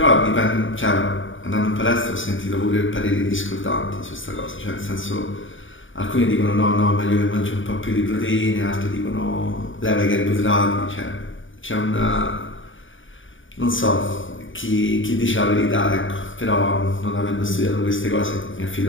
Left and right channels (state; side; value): late; right; 0.57 ms